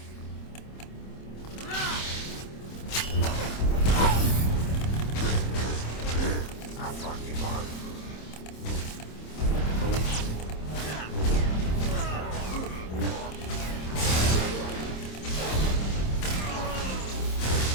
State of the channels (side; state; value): right; late; 26 ms